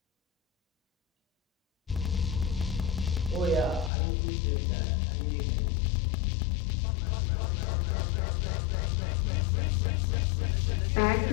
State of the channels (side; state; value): right; drops out; at 3.9 s